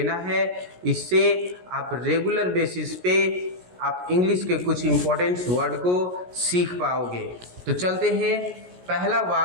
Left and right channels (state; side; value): late; left; 17 ms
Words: है, इससे आप रेगुलर बेसिस पे आप इंग्लिश के कुछ इम्पोर्टेंट वर्ड को सीख पाओगे। तो चलते हैं। पहला